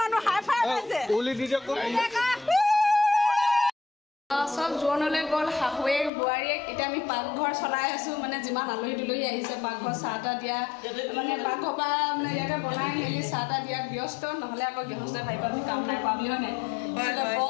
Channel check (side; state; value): right; drops out; at 6.1 s